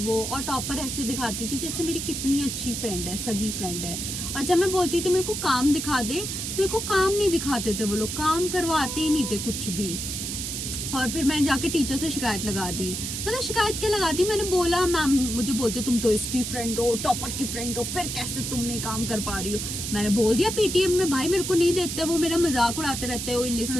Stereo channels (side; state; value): right; noise; hiss, 4 dB below the sound